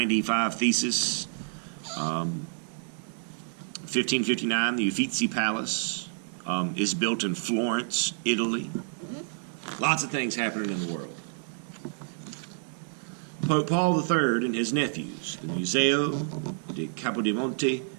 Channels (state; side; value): silent; left; digital silence